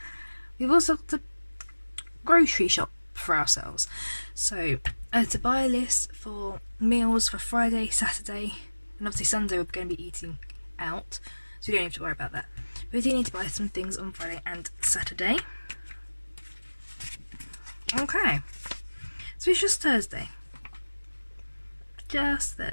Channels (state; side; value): inverted; both; correlation -1.00